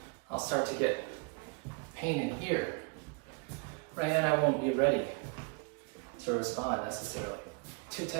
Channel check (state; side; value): quieter; left; 33.1 dB